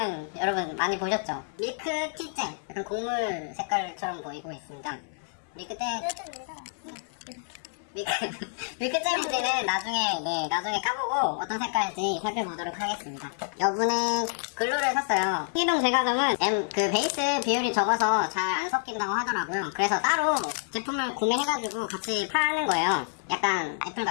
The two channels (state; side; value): silent; right; 58 dB below the other